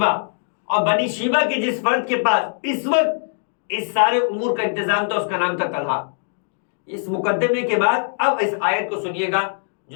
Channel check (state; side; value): silent; right; digital silence